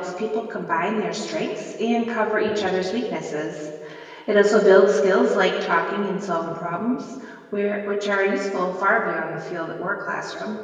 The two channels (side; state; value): both; identical; correlation 1.00